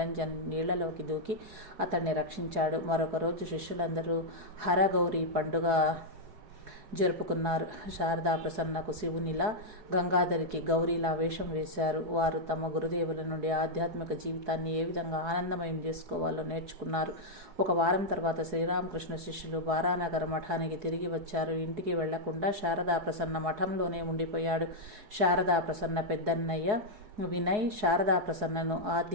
నీళ్లలోకి దూకి అతన్ని రక్షించాడు. మరొక రోజు శిష్యులందరూ హరగౌరి పండుగ జరుపుకున్నారు. శారదా ప్రసన్నకు శివునిలా, గంగాధరికి గౌరీలా వేషం వేశారు. వారు తమ గురుదేవుల నుండి ఆధ్యాత్మిక జీవితాన్ని ఏ విధంగా ఆనందమయం చేసుకోవాలో నేర్చుకున్నారు. ఒక వారం తర్వాత శ్రీరామకృష్ణ శిష్యులు బారానగర్ మఠానికి తిరిగి వచ్చారు. ఇంటికి వెళ్లకుండా శారదా ప్రసన్న మఠంలోనే ఉండిపోయాడు. శారదా ప్రసన్న పెద్దన్నయ్య వినయ్ శారదా ప్రసన్నను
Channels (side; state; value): left; late; 4.7 ms